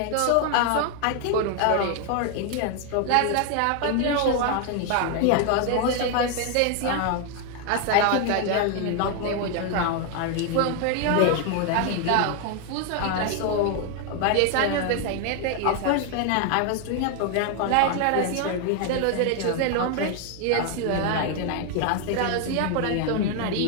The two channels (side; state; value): both; different; correlation 0.01